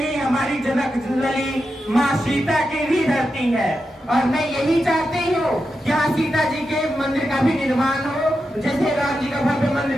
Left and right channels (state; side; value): normal; both; correlation 0.88